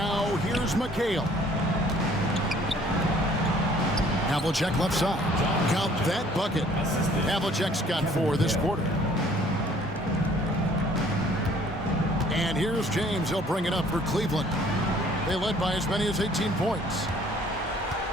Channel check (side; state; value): both; normal; correlation 0.57